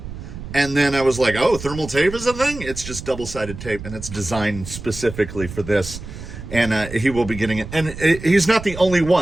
and then I was like, oh, thermal tape is a thing? It's just double-sided tape, and it's designed specifically for this. And he will be getting it. And he's not the only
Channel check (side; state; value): right; noise; rumble, 11 dB below the sound